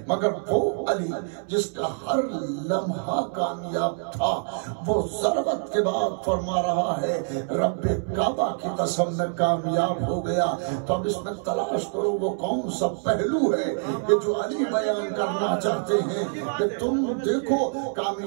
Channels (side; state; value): left; silent; 61 dB below the other